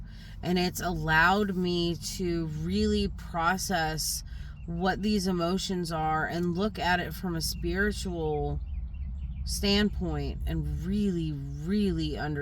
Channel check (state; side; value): identical; both; correlation 1.00